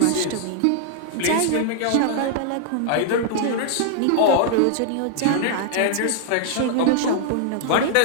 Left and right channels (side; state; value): both; different; correlation -0.01